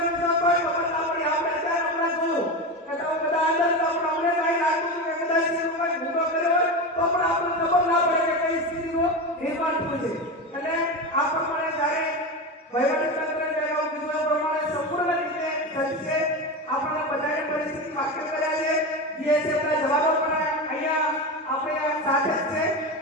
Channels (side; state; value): both; normal; correlation 0.20